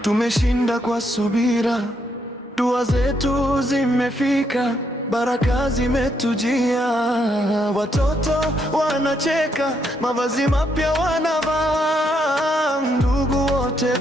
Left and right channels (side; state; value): both; normal; correlation 0.76